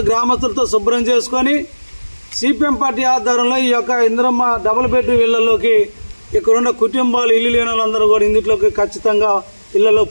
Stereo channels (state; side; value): inverted; both; correlation -1.00